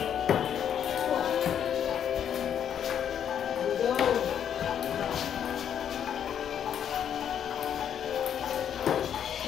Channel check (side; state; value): right; quieter; 9.0 dB